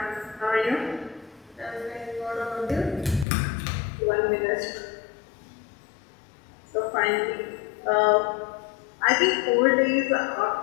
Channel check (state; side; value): drops out; right; at 3.2 s